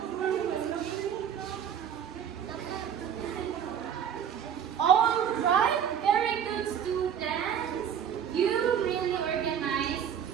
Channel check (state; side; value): quieter; left; 8.7 dB